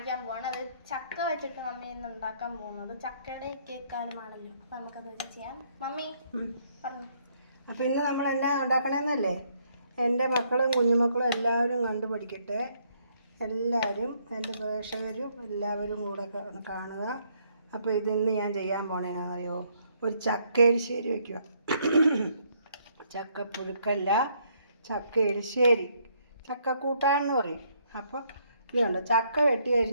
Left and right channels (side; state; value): both; inverted; correlation -0.69